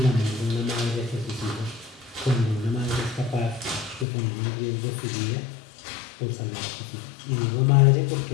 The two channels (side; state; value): right; drops out; at 4.0 s